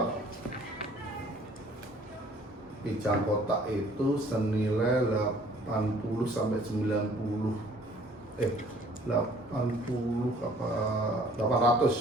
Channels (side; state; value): both; normal; correlation 0.56